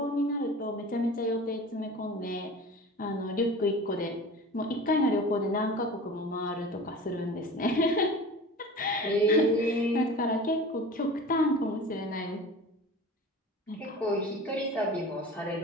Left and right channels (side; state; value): both; normal; correlation 0.37